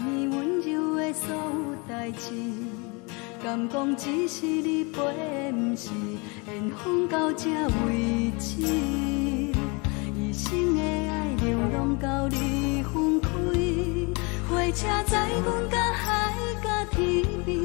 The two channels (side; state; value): right; quieter; 30.0 dB